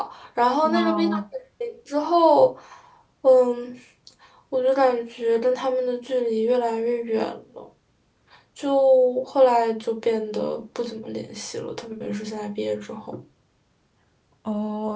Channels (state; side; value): identical; both; correlation 1.00